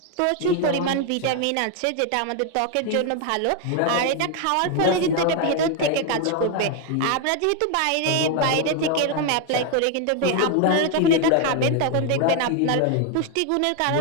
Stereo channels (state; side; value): different; both; correlation 0.01